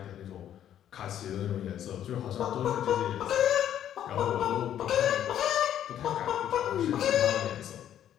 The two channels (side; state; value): right; quieter; 10.6 dB